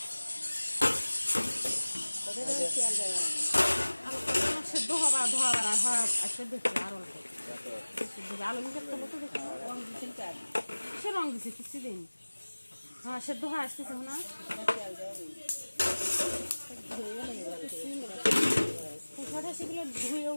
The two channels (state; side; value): inverted; both; correlation -1.00